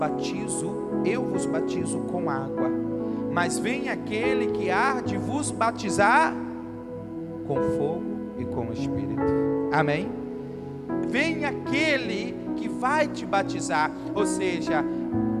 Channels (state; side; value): identical; both; correlation 1.00